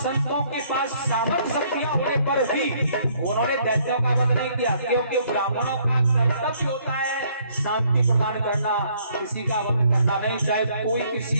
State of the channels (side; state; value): both; inverted; correlation -0.65